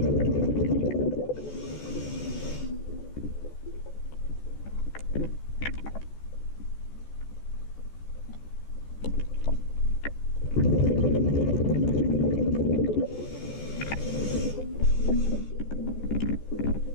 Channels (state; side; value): late; right; 14 ms